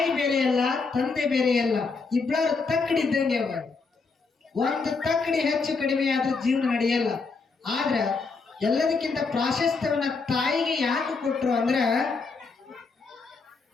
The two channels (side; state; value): right; quieter; 4.4 dB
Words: ಬೇರೆಯಲ್ಲ, ತಂದೆ ಬೇರೆಯಲ್ಲ, ಇಬ್ಬರು ತಕ್ಕಡಿದ್ದಂಗೆ ಅವ. ಒಂದು ತಕ್ಕಡಿ ಹೆಚ್ಚು ಕಡಿಮೆ ಆದ್ರೂ ಜೀವನ ನಡೆಯಲ್ಲ. ಆದ್ರ ಎಲ್ಲದಕ್ಕಿಂತ ಪ್ರಾಶಸ್ತ್ಯವನ್ನ ತಾಯಿಗೆ ಯಾಕೆ ಕೊಟ್ರು ಅಂದ್ರ,